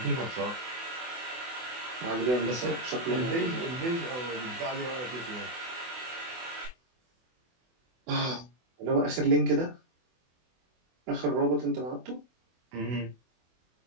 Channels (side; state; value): left; late; 24 ms